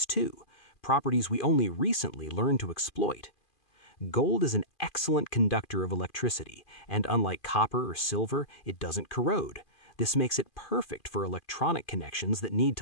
too, properties we only recently learned to exploit. Gold is an excellent conductor of electricity, and unlike copper or silver, it doesn't corrode. This makes it perfect for electronic connections that need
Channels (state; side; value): late; right; 2.4 ms